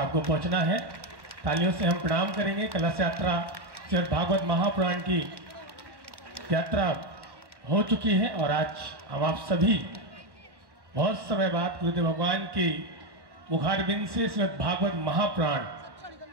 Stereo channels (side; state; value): left; late; 1.1 ms